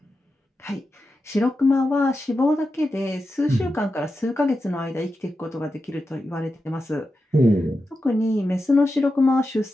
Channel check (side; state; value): both; normal; correlation 0.90